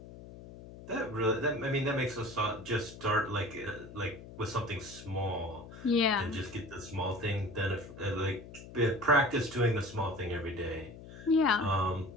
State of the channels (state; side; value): noise; left; hum, 15 dB below the sound